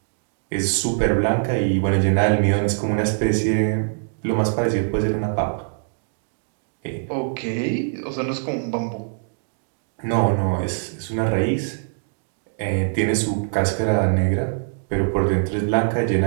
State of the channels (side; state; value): left; silent; digital silence